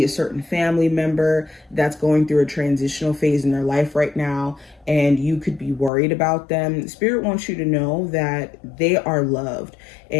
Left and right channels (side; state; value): right; drops out; at 5.9 s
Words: a certain family member that's going through a transitional phase in their life right now and you could be worried about them. Spirit wants you to know that they are loved